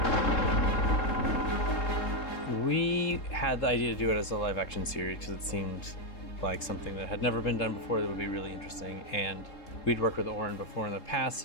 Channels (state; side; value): late; right; 3.7 ms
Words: We had the idea to do it as a live action series because it seemed like something that had never been done before that would be really interesting. And we'd worked with Oren before in the past,